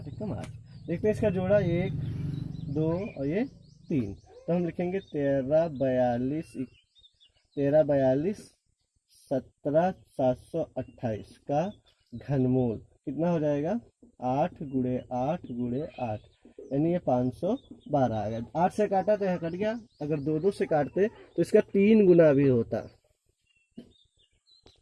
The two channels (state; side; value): identical; both; correlation 1.00